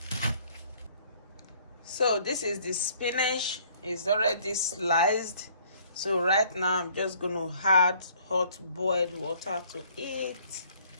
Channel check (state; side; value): inverted; both; correlation -0.59